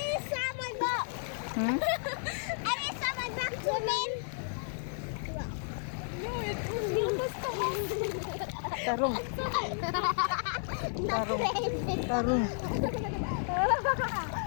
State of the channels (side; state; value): right; silent; digital silence